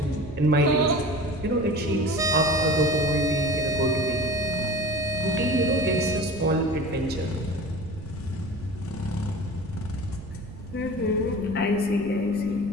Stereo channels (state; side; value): noise; right; rumble, 14 dB below the sound